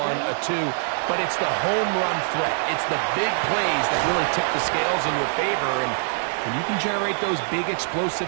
a 2. But it's the home run threat. It's the big plays that really tip the scales in your favor. And when you can generate those big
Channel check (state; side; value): silent; left; digital silence